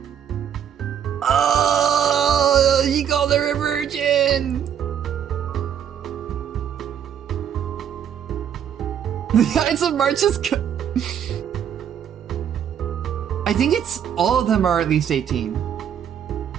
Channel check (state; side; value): quieter; left; 9.0 dB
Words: Oh, he called her a virgin. The Ides of March is I think it's all of them are at least 18.